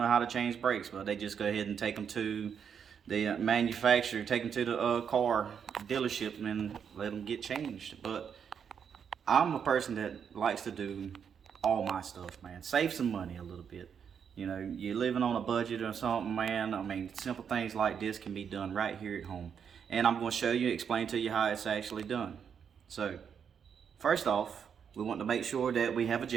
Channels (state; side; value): quieter; left; 7.4 dB